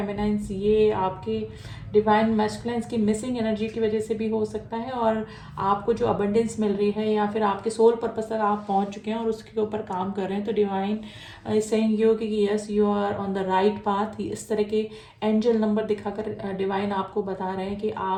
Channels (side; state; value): both; identical; correlation 1.00